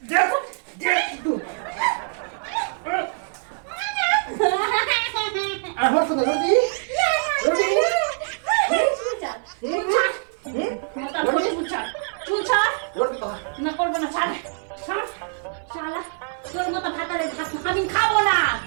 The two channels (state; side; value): silent; left; 56 dB below the other